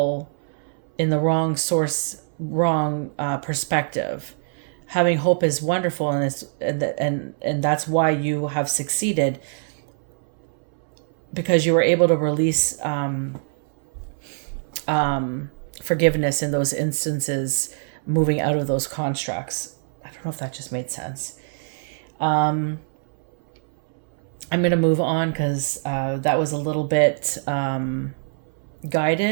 in the wrong source, wrong perspective. Having hope is wonderful, and that's why you have succeeded, because you were able to release forgiveness in those instances, moving out of those constructs. I don't know if that just made sense. I'm going to move on because that was a little bit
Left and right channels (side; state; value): left; silent; 63 dB below the other